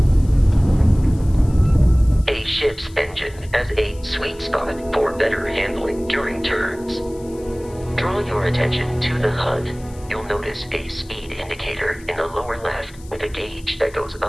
A ship's engine has a sweet spot for better handling during turns. Draw your attention to the HUD. You'll notice a speed indicator in the lower left with a gauge that goes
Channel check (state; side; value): noise; left; hiss, 24 dB below the sound